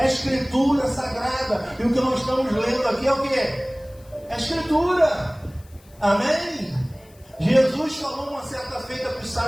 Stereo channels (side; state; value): left; noise; hiss, 28 dB below the sound